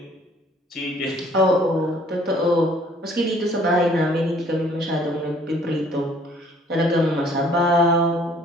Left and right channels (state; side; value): normal; both; correlation 0.58